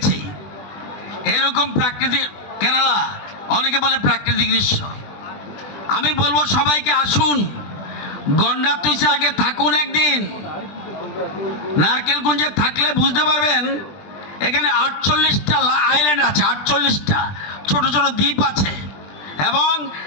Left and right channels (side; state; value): right; late; 20 ms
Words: এরকম প্রাকৃতিক, কেরালা অনেকে বলে প্রাকৃতিক দৃশ্য। আমি বলবো সবাইকে আসুন, গন্ডাতুইসে আগে থাকুন একদিন। নারকেলকুঞ্জে থাকলে বুঝতে পারবেন এখানে 48টা আইল্যান্ড আছে, 48টা ছোট ছোট দ্বীপ আছে এবং